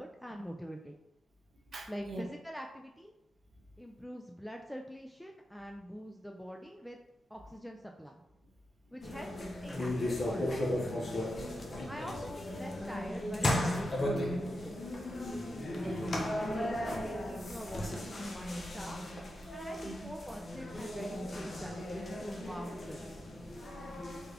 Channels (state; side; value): normal; both; correlation 0.88